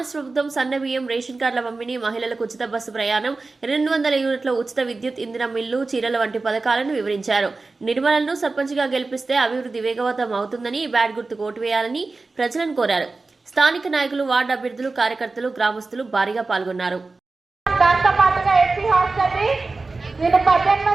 ప్రభుత్వం సన్నబియ్యం, రేషన్ కార్డుల పంపిణీ, మహిళలకు ఉచిత బస్సు ప్రయాణం, 200 యూనిట్ల ఉచిత విద్యుత్, ఇంధన మిల్లు, చీరల వంటి పథకాలను వివరించారు. నిర్మలను సర్పంచ్గా గెలిపిస్తే అభివృద్ధి వేగవంతం అవుతుందని, బ్యాట్ గుర్తుకు ఓటు వేయాలని ప్రజలను కోరారు. స్థానిక నాయకులు, వార్డు అభ్యర్థులు, కార్యకర్తలు, గ్రామస్తులు భారీగా పాల్గొన్నారు. దాంతో పాటుగా ఎస్సీ హాస్టల్ని నేను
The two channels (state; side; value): quieter; left; 3.7 dB